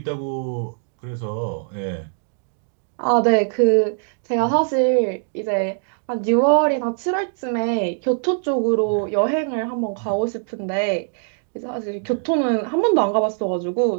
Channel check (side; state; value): left; silent; digital silence